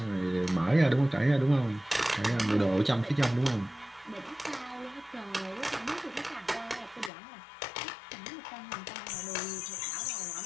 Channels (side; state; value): right; drops out; at 7.1 s